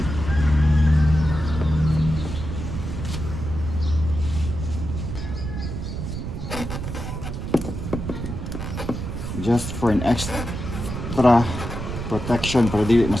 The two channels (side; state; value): right; noise; rumble, 6 dB below the sound